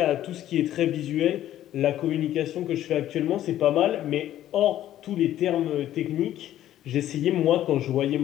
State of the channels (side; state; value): right; quieter; 12.6 dB